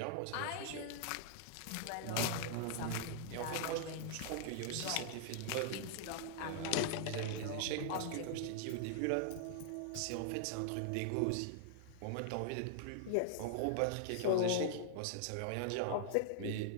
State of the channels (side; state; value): both; different; correlation -0.01